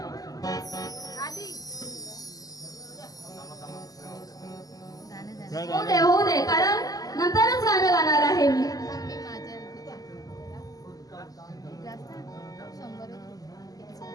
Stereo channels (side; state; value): right; late; 0.17 ms